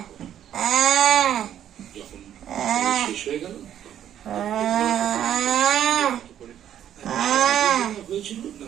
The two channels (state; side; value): quieter; left; 10.5 dB